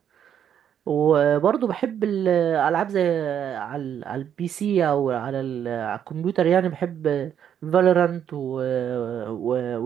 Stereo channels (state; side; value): quieter; left; 9.1 dB